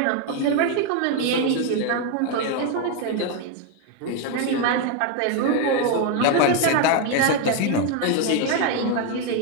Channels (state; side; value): different; both; correlation 0.01